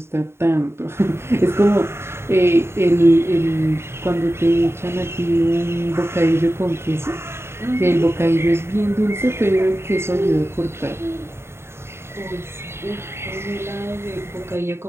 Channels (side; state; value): left; late; 0.12 ms